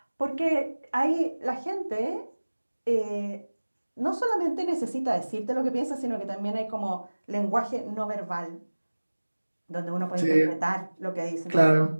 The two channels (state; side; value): inverted; both; correlation -1.00